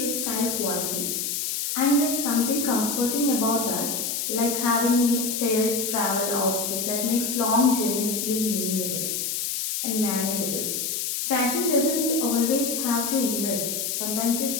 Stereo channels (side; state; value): left; noise; hiss, 1 dB below the sound